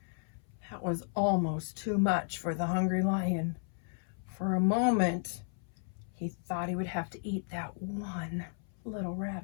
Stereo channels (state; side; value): silent; right; 55 dB below the other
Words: That was almost too much for the hungry lion. For a moment, he thought he would have to eat that one little